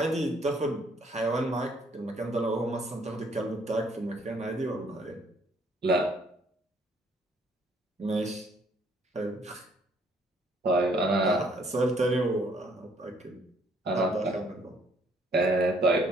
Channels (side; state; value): both; normal; correlation 0.64